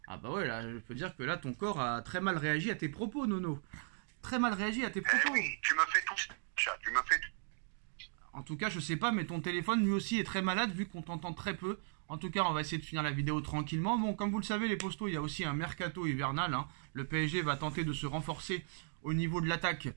Ah bah ouais, là, je peux dire que là, ton corps a très mal réagi à tes propos, Nono. Très mal réagi à tes propos. Oui, tu me fais tout ça. Tu me fais tout. En tout cas, je sais pas, mais ton téléphone, lui aussi, est très malade, vu qu'on t'entend très peu. En tout cas, on va essayer de finir la vidéo tranquillement. Bon, comme vous le savez, les postos, il y a aussi un mercato hivernal. Hein. Le PSG va tenter de se renforcer au niveau de l'attaque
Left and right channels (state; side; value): silent; left; digital silence